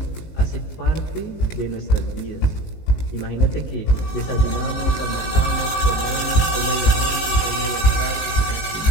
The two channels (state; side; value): late; right; 19 ms